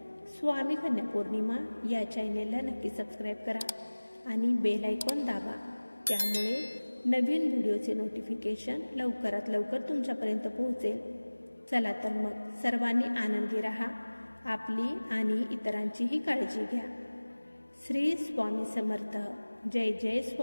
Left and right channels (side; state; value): both; inverted; correlation -1.00